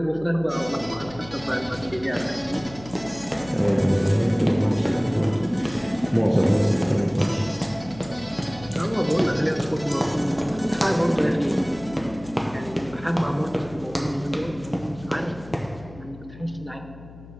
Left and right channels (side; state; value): left; noise; hum, 18 dB below the sound